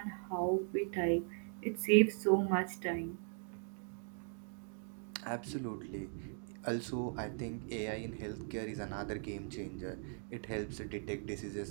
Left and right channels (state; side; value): silent; left; 52 dB below the other